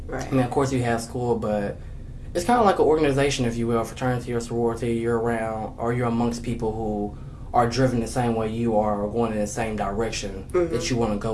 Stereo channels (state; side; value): identical; both; correlation 1.00